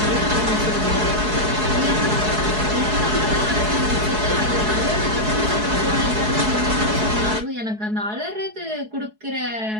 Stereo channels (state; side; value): late; left; 4.7 ms